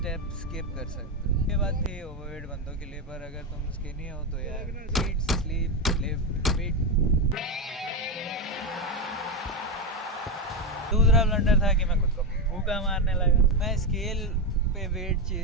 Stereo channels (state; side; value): normal; both; correlation 0.10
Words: स्किप कर सकते हो। ये बात थी ओवरवेट बंदों के लिए, पर अगर तुम स्किनी हो तो यार ईट, स्लीप, लिफ्ट, वेट। दूसरा ब्लंडर था कि मैं खुद को भूखा मारने लगा। मैं स्केल पे वेट